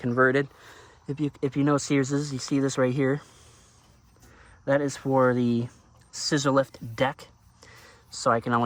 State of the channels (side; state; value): both; identical; correlation 1.00